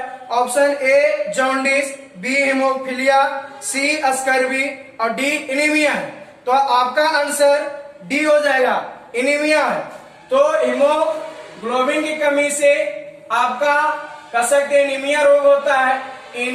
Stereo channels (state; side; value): identical; both; correlation 1.00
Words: Option A jaundice, B haemophilia, C scurvy और डी एनीमिया है। तो आपका आंसर डी हो जाएगा, एनीमिया है। तो हीमोग्लोबिन की कमी से आपका कह सकते हैं एनीमिया रोग होता है,